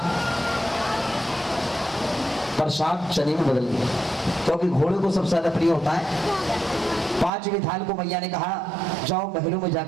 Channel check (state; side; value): drops out; left; at 7.3 s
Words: चने में बदल गया, क्योंकि घोड़े को सबसे ज्यादा प्रिय होता है। पांचवी थाल को मैया ने कहा जाओ महलों में